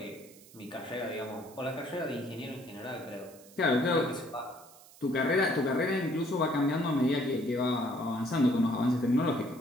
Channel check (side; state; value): right; noise; hiss, 22 dB below the sound